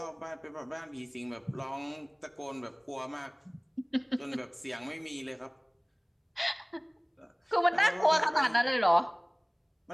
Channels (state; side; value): identical; both; correlation 1.00